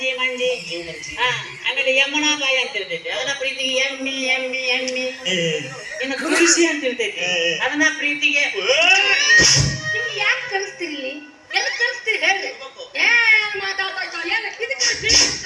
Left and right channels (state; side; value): identical; both; correlation 1.00